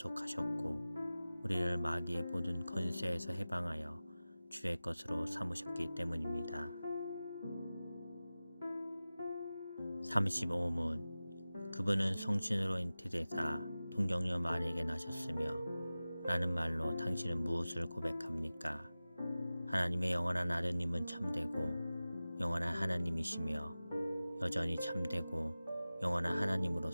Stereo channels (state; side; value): inverted; both; correlation -0.96